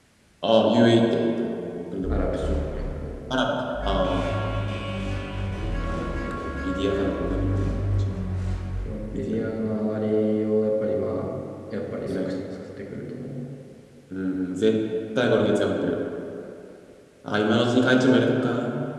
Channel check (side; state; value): both; identical; correlation 1.00